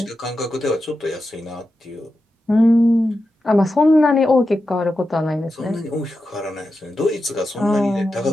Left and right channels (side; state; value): both; normal; correlation 0.90